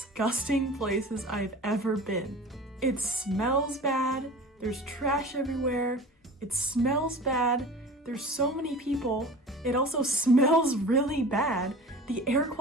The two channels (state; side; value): normal; both; correlation 0.38